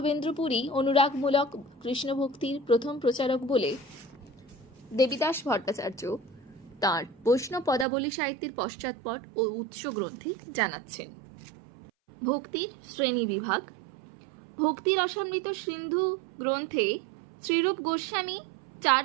পুরী অনুরাগমূলক কৃষ্ণভক্তির প্রথম প্রচারক বলে দেবীদাস ভট্টাচার্য তাঁর বৈষ্ণব পদাবলী সাহিত্যের পশ্চাৎপট ও উৎস গ্রন্থে জানাচ্ছেন। ভক্তির শ্রেণী বিভাগ। ভক্তি রসামৃত সিন্ধু গ্রন্থে শ্রীরূপ গোস্বামী 4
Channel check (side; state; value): left; drops out; at 7.9 s